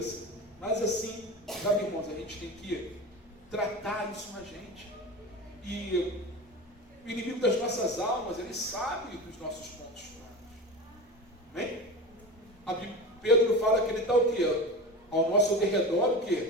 Senhor. Mas assim, sabe, irmãos, a gente tem que tratar isso na gente. E o inimigo das nossas almas, ele sabe dos nossos pontos fracos. Amém? Pedro fala que ele está o quê? Ao nosso derredor, o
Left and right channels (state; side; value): normal; both; correlation 0.28